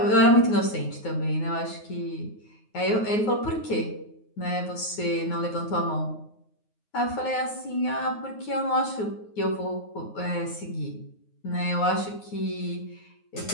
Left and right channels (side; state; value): right; late; 9.4 ms